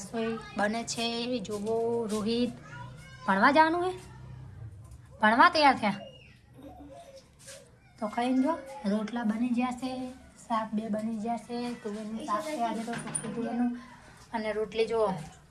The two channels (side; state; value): both; identical; correlation 1.00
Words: બને છે। જુઓ રોહિત ભણવા જવાનું હે, ભણવા તૈયાર થયા તો ખાઈને જો રોટલા બની ગયા છે, શાક બે બની ગયા છે। તુવેરનું શાક છે આજે તો સુકી તુવેરનું, અને રોટલી જુઓ